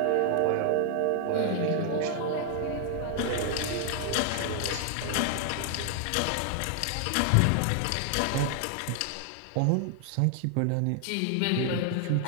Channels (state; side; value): different; both; correlation 0.00